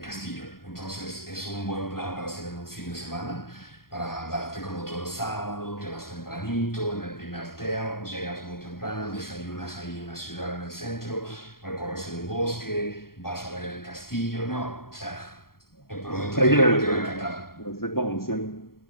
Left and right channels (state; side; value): late; right; 0.93 ms